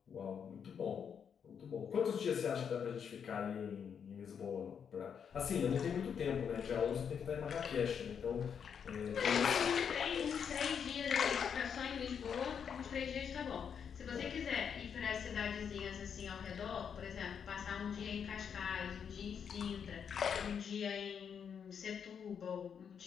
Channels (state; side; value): quieter; right; 7.3 dB